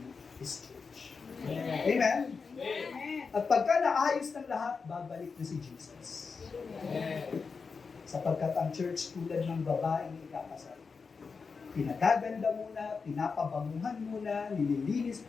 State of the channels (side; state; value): right; quieter; 5.0 dB